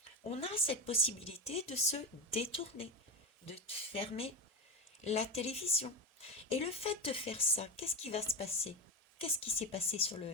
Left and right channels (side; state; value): both; normal; correlation 0.17